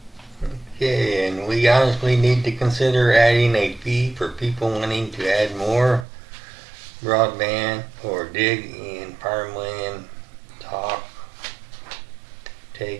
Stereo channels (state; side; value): drops out; left; at 6.1 s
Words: Okay, and we honestly need to consider adding a fee for people wanting to add more broadband or dig in farmland,